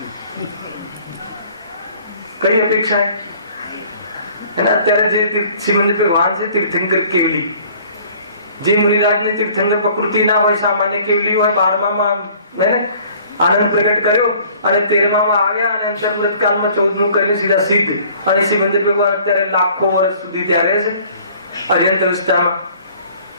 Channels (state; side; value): inverted; both; correlation -0.54